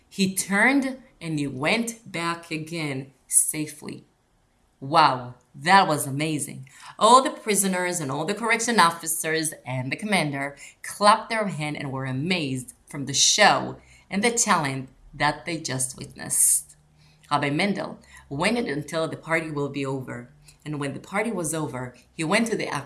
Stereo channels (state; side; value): identical; both; correlation 1.00